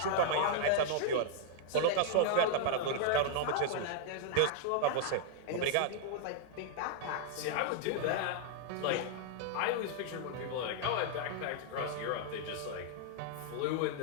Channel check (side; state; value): both; different; correlation -0.01